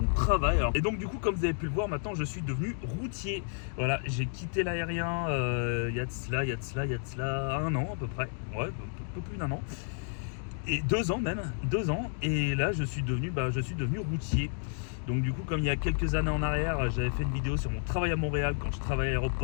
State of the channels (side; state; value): right; silent; 57 dB below the other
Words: travail. Et donc du coup, comme vous avez pu le voir, maintenant je suis devenu routier. Voilà, j'ai quitté l'aérien il y a de cela 1 an à peu près, ouais, un peu plus d'1 an. Et 2 ans même, 2 ans, et là je suis devenu routier. Donc du coup, comme il y a quelques années en arrière, j'avais fait une vidéo sur mon travail à Montréal quand je travaillais à